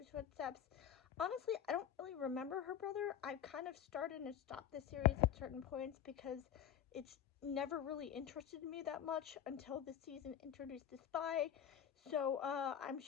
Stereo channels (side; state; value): right; quieter; 9.6 dB